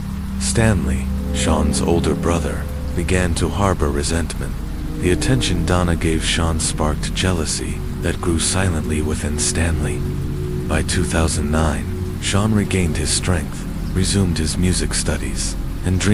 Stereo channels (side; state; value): both; identical; correlation 1.00